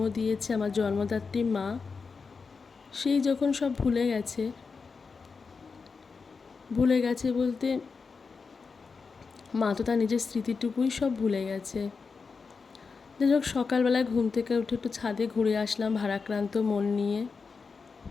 দিয়েছে, আমার জন্মদাত্রী মা, সেই যখন সব ভুলে গেছে বলতে মা তো তার নিজের স্মৃতিটুকুই সব ভুলে গেছে। যাই হোক, সকালবেলায় ঘুম থেকে উঠে একটু ছাদে ঘুরে আসলাম ভারাক্রান্ত মন নিয়ে।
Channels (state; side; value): quieter; right; 5.0 dB